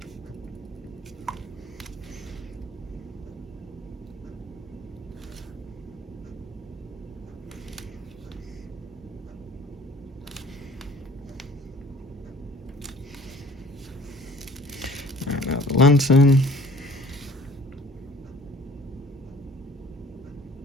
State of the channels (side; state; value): both; normal; correlation 0.51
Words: Now the lantern.